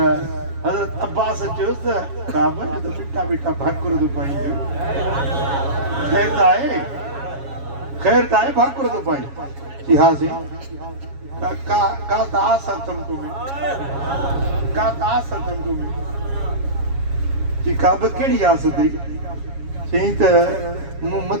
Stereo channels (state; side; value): late; left; 7.3 ms